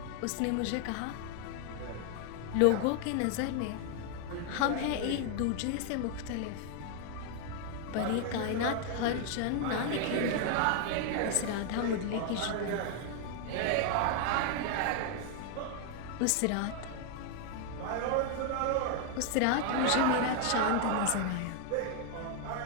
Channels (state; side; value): different; both; correlation 0.00